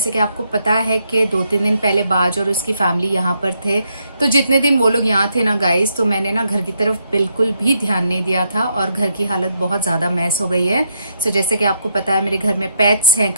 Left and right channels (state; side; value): inverted; both; correlation -0.77